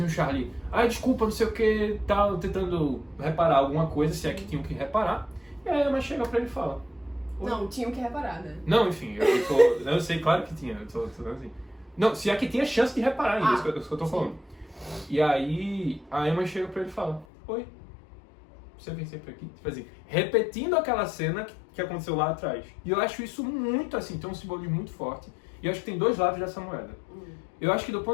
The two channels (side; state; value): right; drops out; at 17.2 s